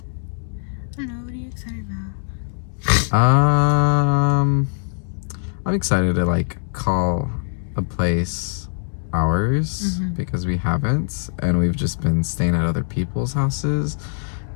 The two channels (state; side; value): silent; right; digital silence